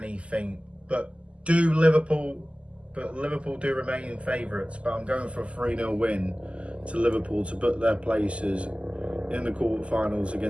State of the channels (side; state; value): left; late; 0.057 ms